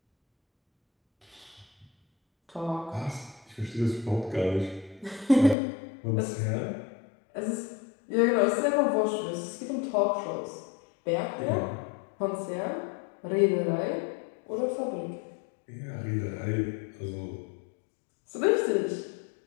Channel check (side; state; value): right; drops out; at 5.6 s